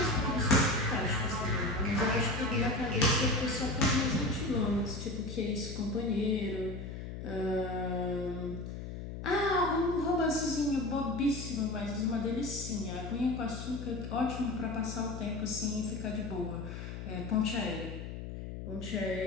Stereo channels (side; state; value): left; noise; hum, 8 dB below the sound